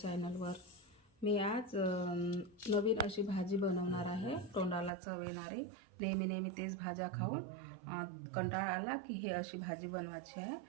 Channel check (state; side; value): drops out; left; at 4.9 s